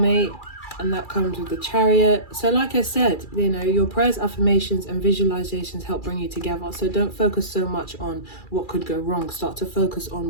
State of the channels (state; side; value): late; right; 2.3 ms